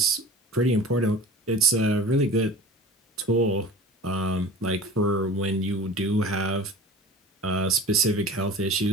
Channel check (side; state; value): both; normal; correlation 0.38